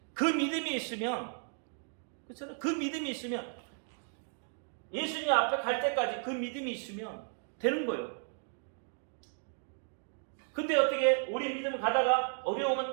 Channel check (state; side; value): silent; left; 55 dB below the other